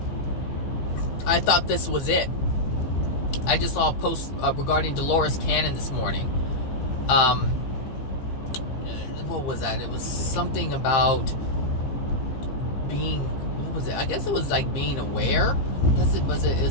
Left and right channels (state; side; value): late; right; 15 ms